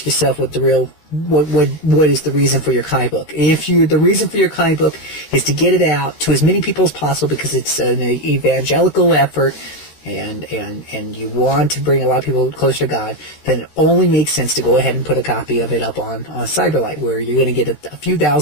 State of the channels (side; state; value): right; late; 14 ms